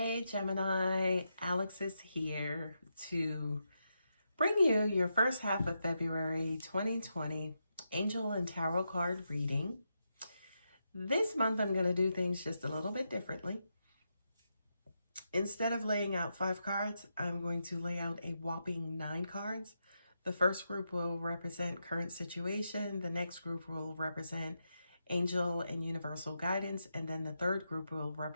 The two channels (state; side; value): inverted; both; correlation -0.85